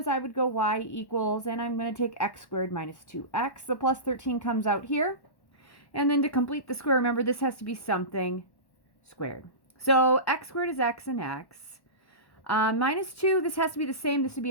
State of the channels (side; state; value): right; late; 1.1 ms